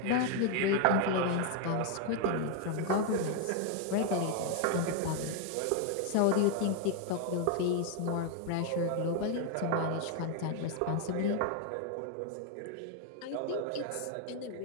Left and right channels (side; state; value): both; different; correlation 0.01